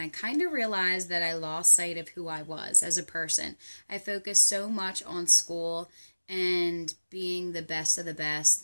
kind of realized that I lost sight of who I was as a person. I focused so much on school and being the best of the best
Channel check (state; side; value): inverted; both; correlation -1.00